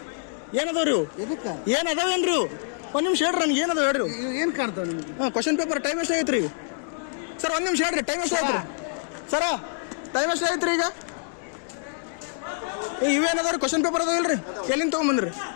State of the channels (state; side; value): silent; right; digital silence